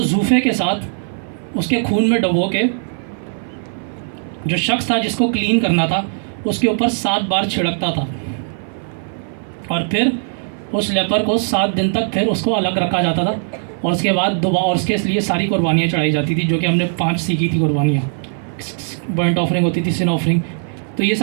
जूफे के साथ उसके खून में डुबो के जो शख्स था जिसको क्लीन करना था उसके ऊपर 7 बार छिड़कता था, और फिर उस लेपर को 7 दिन तक फिर उसको अलग रखा जाता था, और उसके बाद दोबारा और उसके लिए सारी कुर्बानियाँ चढ़ाई जाती थी, जो कि हमने 5 सीखी थी कुर्बानियाँ। बर्नट ऑफरिंग होती थी, सिन ऑफरिंग, तो ये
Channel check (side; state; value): left; silent; 57 dB below the other